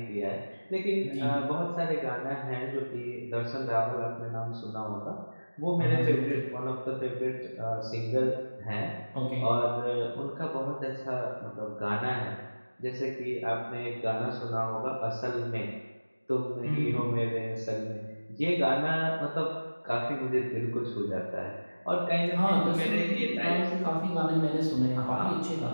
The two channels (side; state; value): both; inverted; correlation -1.00